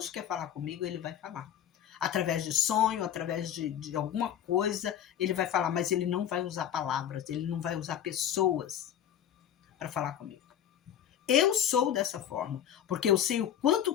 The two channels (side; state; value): right; quieter; 10.1 dB